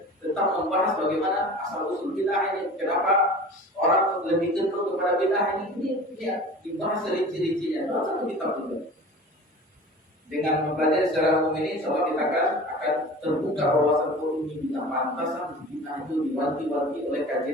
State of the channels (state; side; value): normal; both; correlation 0.39